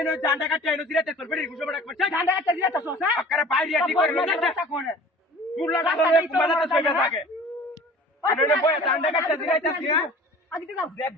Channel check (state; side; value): normal; both; correlation 0.45